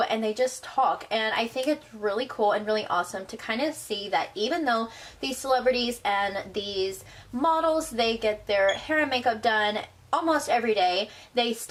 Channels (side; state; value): both; identical; correlation 1.00